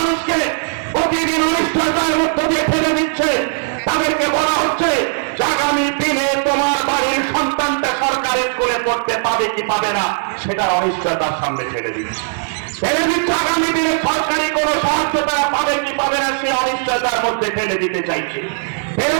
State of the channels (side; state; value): left; silent; digital silence